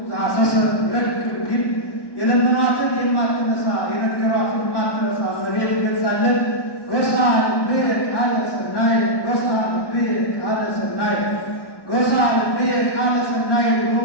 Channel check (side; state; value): right; late; 1.1 ms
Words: ዛሰሰ ረድ እንዲል የለመኗትን የማትነሳ የነገሯትን የማትረሳ እመቤት ገልጻለን። ጎሳ ልብየ ቃለ ሰናይ ጎሳ ልብየ ቃለ ሰናይ ጎሳ ልብየ ቃለ ሰናይ ብሎ